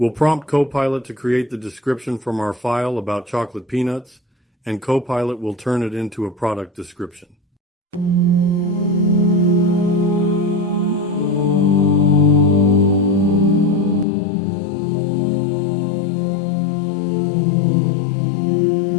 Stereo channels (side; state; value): right; drops out; at 14.1 s